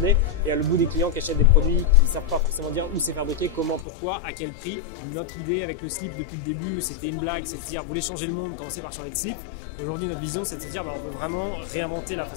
et à le bout des clients qui achètent des produits qui ne savent pas forcément dire où c'est fabriqué, comment, pourquoi, à quel prix. Notre idée avec le slip depuis le début, c'était une blague, c'est de dire vous voulez changer le monde, commencez par changer de slip. Aujourd'hui, notre vision, c'est de se dire on veut vraiment réinventer la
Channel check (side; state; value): right; drops out; at 3.9 s